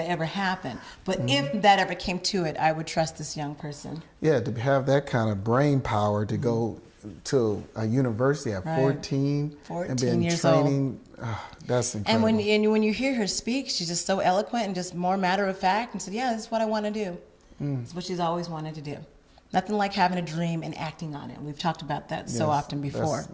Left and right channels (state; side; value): identical; both; correlation 1.00